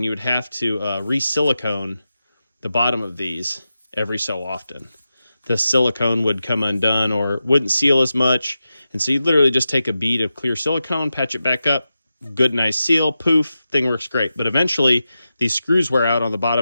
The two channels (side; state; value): both; inverted; correlation -0.91